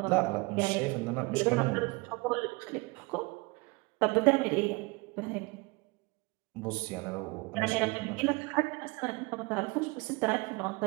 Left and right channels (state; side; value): quieter; left; 26.3 dB